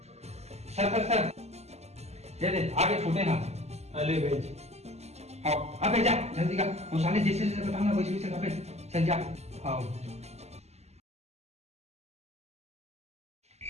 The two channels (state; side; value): late; left; 0.31 ms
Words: सर सर सर दे दे आगे छोटे ना। अले भेज हाँ अबे जा जल्दी का वो साले जैसे जैसे बताऊंगा वैसे वैसे अबे चल जा। हाँ